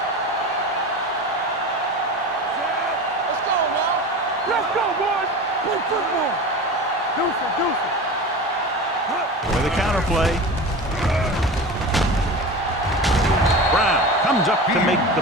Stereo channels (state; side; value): normal; both; correlation 0.31